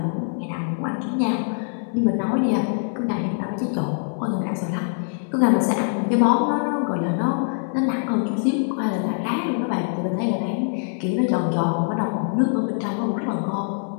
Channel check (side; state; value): right; silent; digital silence